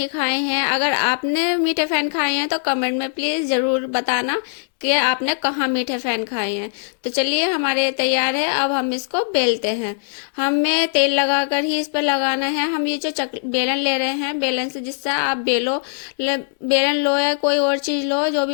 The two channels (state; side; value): silent; right; digital silence